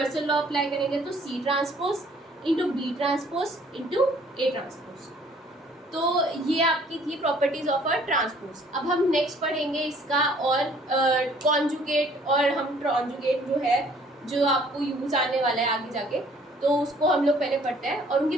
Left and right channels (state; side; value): normal; both; correlation 0.58